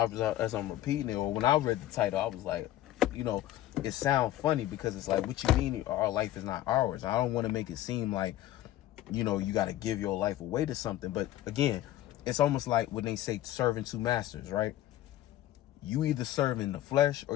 repeating it, or when I read the title, I was like, you know, it sounds funny because it's like, what you mean our life is not ours? I don't want to make it seem like, you know, you got to give your life away to something. But again, it's almost like when they say serving two masters, right? You either serving the flesh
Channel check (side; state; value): right; quieter; 13.7 dB